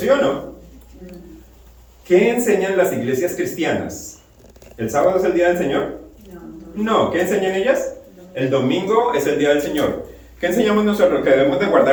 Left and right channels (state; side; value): identical; both; correlation 1.00